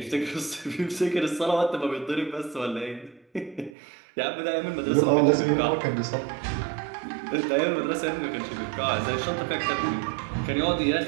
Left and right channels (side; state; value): left; drops out; at 3.7 s